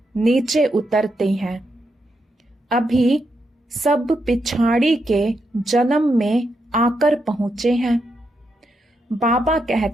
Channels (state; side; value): normal; both; correlation 0.82